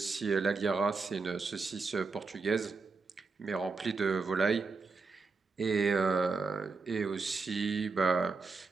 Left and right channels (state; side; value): quieter; left; 4.3 dB